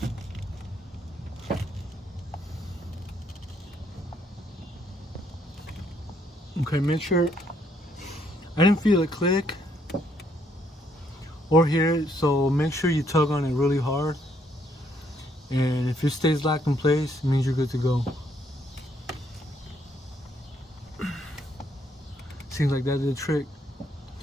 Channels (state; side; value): normal; both; correlation 0.71